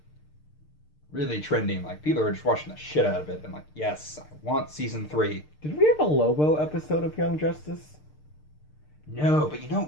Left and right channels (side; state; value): right; late; 6.6 ms